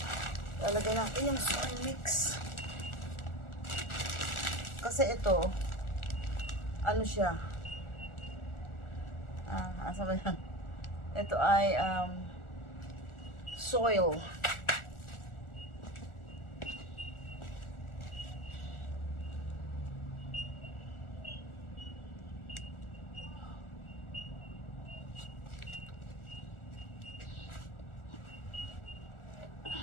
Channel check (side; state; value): right; late; 1.4 ms